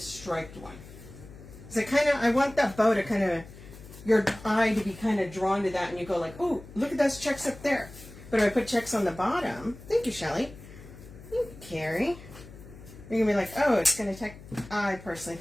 one. So I want that bow to kind of, your eye to be kind of drawn to that, and you go like, oh, look at those checks up there. But if I put checks on the bottom, thank you, Shelly. Thank you, Carrie. You're going to be like, oh, it's going to take, I personally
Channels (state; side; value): noise; left; hum, 17 dB below the sound